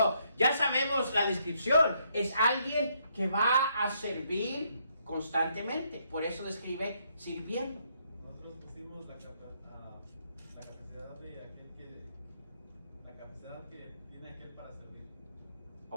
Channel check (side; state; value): both; inverted; correlation -0.73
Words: ya sabemos la descripción. Es alguien que va a servir constantemente. Por eso describe sirviendo. Nosotros pusimos la capacidad de aquel la capacidad que tiene aquel para servir.